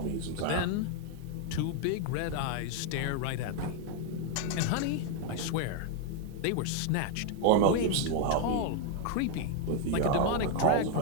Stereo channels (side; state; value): both; different; correlation 0.00